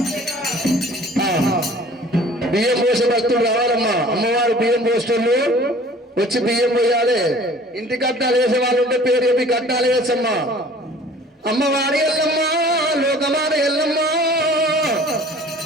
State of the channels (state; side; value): normal; both; correlation 0.49